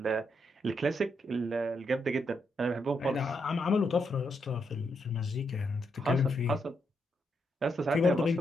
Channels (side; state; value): both; normal; correlation 0.80